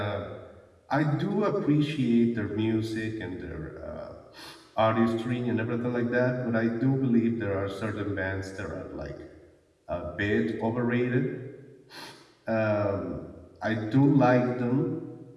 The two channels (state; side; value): identical; both; correlation 1.00